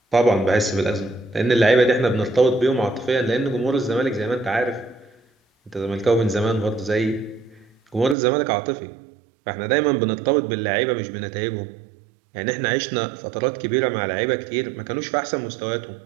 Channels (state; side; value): drops out; left; at 8.2 s